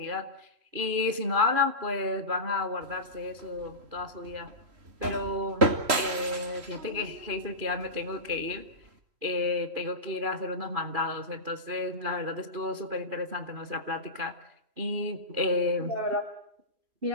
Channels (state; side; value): late; left; 3.1 ms